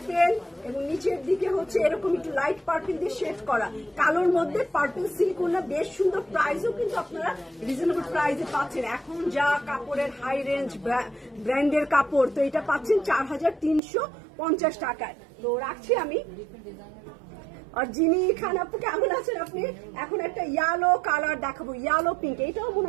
এবং নিচের দিকে হচ্ছে এরকম একটু লাইট পার্পেল দিয়ে শেড করা, কালোর মধ্যে পার্পেল সিল্ক ওড়না, বেশ সুন্দর। প্রাইসও কিন্তু আপনারা রিজনেবল প্রাইসে পাচ্ছেন। এখন যা কাপড়ের হাই রেঞ্জ ব্র্যান্ডের কাপড়, তো এটা পাচ্ছেন 4350 টাকায়। তো রাখছি আমি। আর যিনি খান আপু কেমন আছেন আপনি? এখন একটা ইয়েলো কালার দেখাবো, ইয়েলো পিঙ্ক। এটাও মনে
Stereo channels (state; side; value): drops out; left; at 13.8 s